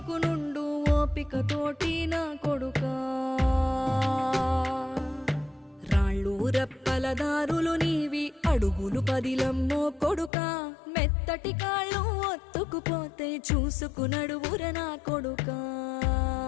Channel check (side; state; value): right; drops out; at 10.3 s